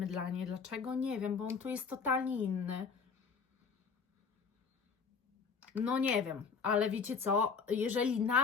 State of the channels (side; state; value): right; quieter; 5.6 dB